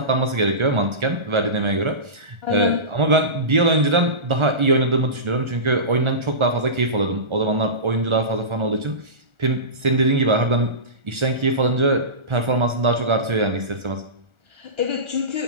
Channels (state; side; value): late; left; 1.4 ms